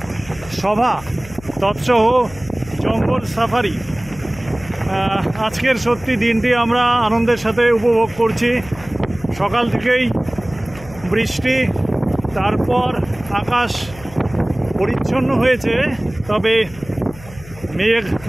সভা তৎসহ জঙ্গল সাফারি। আজকের সত্যি দিনটি আমরা আনন্দের সাথে উপভোগ করছি। সকাল থেকেই বৃষ্টি, তারপর আকাশ পরিচ্ছন্ন হয়েছে, তবে মেঘ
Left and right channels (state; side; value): noise; left; hum, 18 dB below the sound